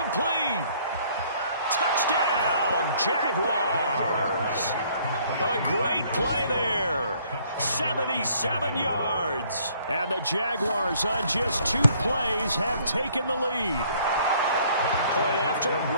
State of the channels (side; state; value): both; inverted; correlation -0.61